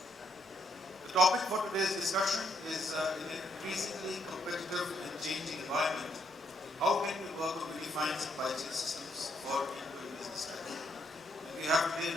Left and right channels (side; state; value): both; normal; correlation 0.73